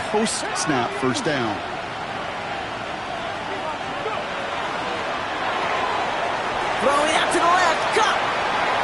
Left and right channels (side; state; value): both; identical; correlation 1.00